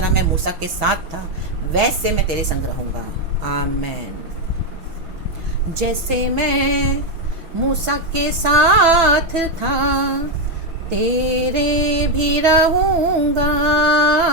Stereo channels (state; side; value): late; left; 6.1 ms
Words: मैं मूसा के साथ था वैसे मैं तेरे संग रहूँगा। आमेन। जैसे मैं मूसा के साथ था तेरे भी रहूँगा।